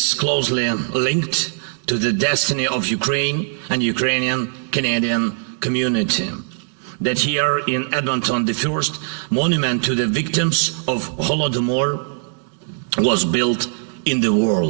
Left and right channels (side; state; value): left; silent; digital silence